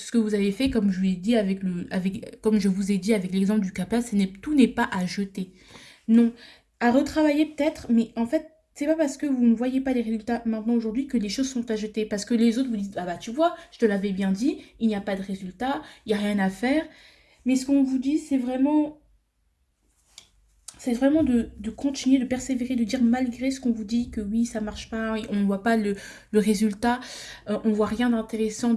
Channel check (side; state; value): both; identical; correlation 1.00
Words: que vous avez fait comme je vous ai dit comme je vous ai dit avec l'exemple du capa tout n'est pas à jeter non à retravailler peut-être mais en fait c'est pas parce que vous ne voyez pas les résultats maintenant aujourd'hui que les choses sont à jeter parce que les autres vous disent ah bah tu vois je te l'avais bien dit il n'y a pas de résultat il n'y a rien à faire mais ce qu'on vous dit c'est vraiment de continuer, de persévérer, de dire malgré ce qu'on vous dit que oui, ça marche pas, on ne voit pas le résultat, on voit rien d'intéressant,